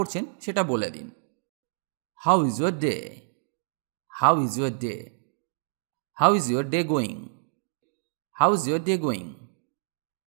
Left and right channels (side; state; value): left; silent; digital silence